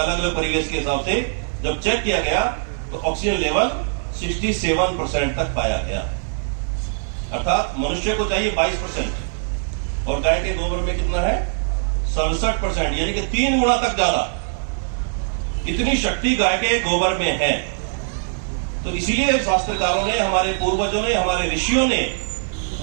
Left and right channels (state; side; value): silent; left; digital silence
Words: अलग अलग परिवेश के हिसाब से जब चेक किया गया तो ऑक्सीजन लेवल 67% तक पाया गया। अर्थात मनुष्य को चाहिए 22% और गाय के गोबर में कितना है 67%, यानी कि 3 गुना तक ज्यादा। इतनी शक्ति गाय के गोबर में है। तो इसीलिए शास्त्रकारों ने, हमारे पूर्वजों ने, हमारे ऋषियों ने